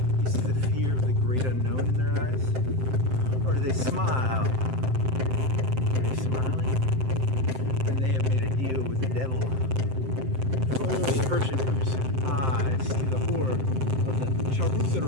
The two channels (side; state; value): left; late; 7.7 ms